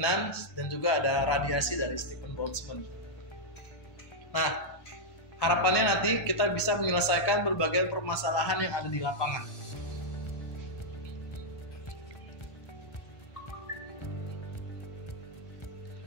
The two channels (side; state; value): right; late; 1.2 ms